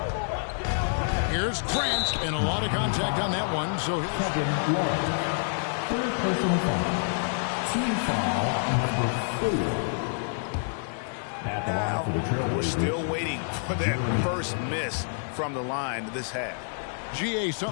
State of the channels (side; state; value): right; silent; 56 dB below the other